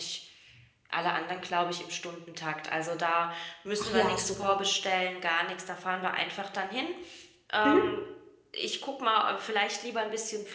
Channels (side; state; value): both; identical; correlation 1.00